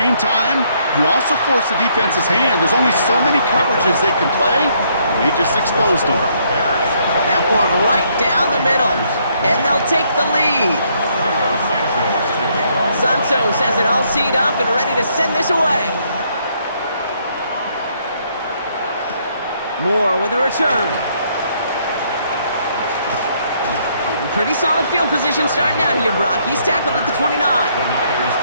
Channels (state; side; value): inverted; both; correlation -0.70